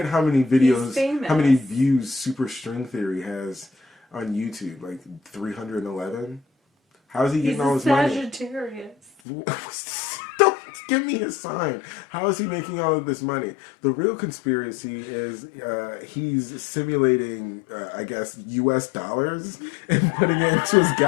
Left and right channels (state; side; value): drops out; right; at 9.1 s